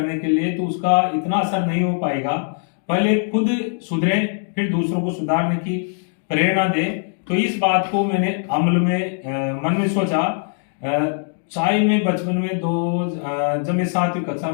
के लिए तो उसका इतना असर नहीं हो पाएगा। पहले खुद सुधरे फिर दूसरों को सुधारने की प्रेरणा दे। तो इस बात को मैंने अमल में मन में सोचा। चाय में बचपन में जब मैं 7वीं कक्षा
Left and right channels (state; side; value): silent; right; 65 dB below the other